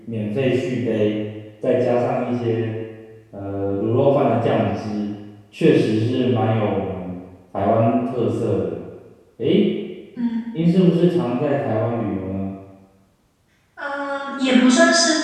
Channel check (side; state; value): both; identical; correlation 1.00